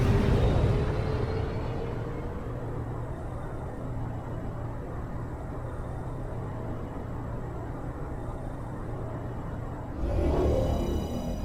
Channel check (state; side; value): identical; both; correlation 1.00